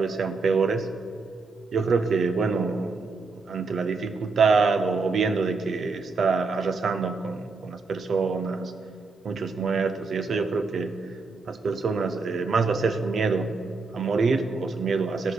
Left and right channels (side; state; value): left; quieter; 4.2 dB